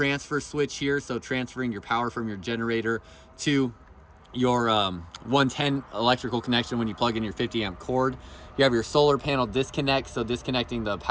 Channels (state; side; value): identical; both; correlation 1.00